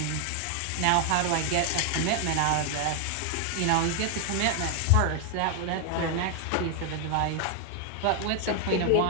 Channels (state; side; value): different; both; correlation 0.00